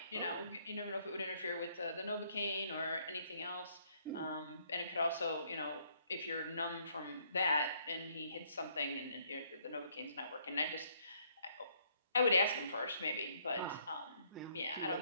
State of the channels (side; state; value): both; inverted; correlation -0.67